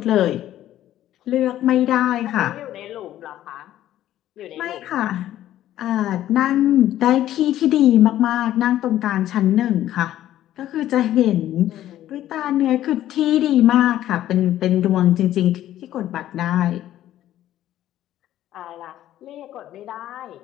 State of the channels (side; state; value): right; quieter; 12.8 dB